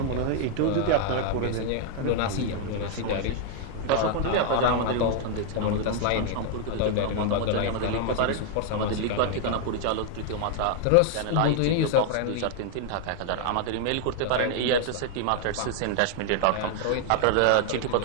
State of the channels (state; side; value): different; both; correlation 0.00